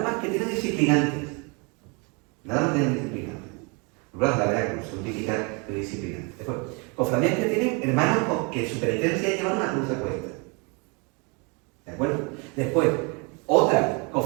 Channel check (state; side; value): quieter; left; 31.9 dB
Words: más que tienen disciplinantes. Nada más tienen disciplinantes. La verdad que son típicas de disciplinantes. Después, cofradías que tienen hermanos que su penitencia es llevar una cruz de cuesta. ¿De acuerdo? Después, otras